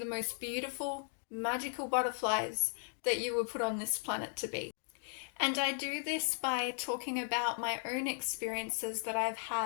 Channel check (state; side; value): silent; right; 54 dB below the other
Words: most beautiful, magical butterflies that you were put on this planet to be. And I do this by talking about my own experiences that I've